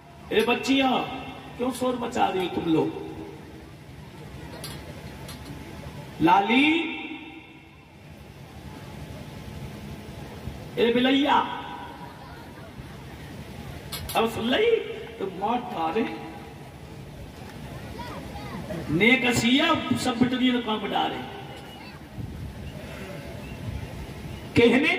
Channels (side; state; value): both; identical; correlation 1.00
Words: ए बच्चियां क्यों शोर मचा रही हो तुम लोग? लाली, ए बिलैया, अब सुन ली तो मौत डारे ने कसिया सब बिटरी काम डारे। कहने